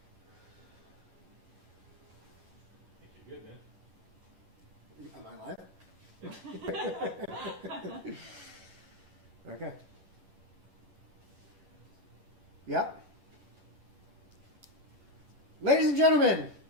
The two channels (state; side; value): late; left; 11 ms